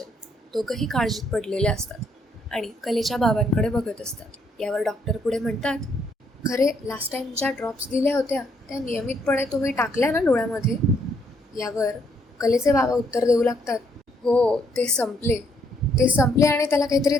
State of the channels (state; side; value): normal; both; correlation 0.71